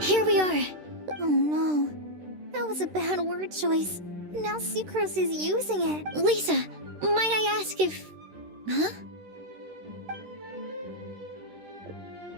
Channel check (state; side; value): late; left; 13 ms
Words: Here we are. Oh no. That was a bad word choice. Now Sucrose is using it. Lisa, might I ask if. Huh?